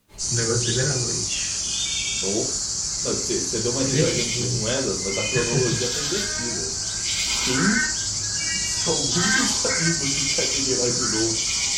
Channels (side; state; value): both; identical; correlation 1.00